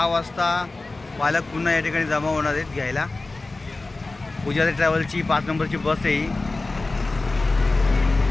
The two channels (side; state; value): right; quieter; 3.3 dB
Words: वाजता पालक पुन्हा या ठिकाणी जमा होणार आहेत घ्यायला। पुजारी ट्रॅव्हलची 5 नंबरची बस आहे ही।